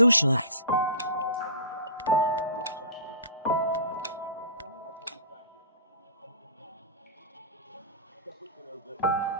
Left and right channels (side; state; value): both; inverted; correlation -0.36